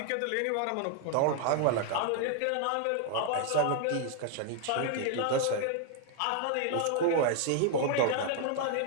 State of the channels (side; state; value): both; different; correlation 0.00